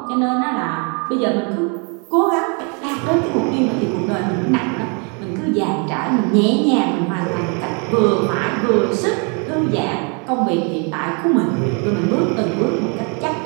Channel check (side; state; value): left; quieter; 35.6 dB